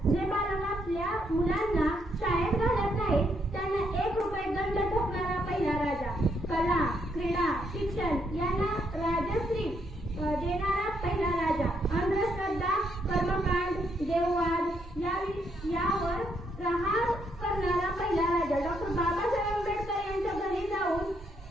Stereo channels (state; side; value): normal; both; correlation 0.75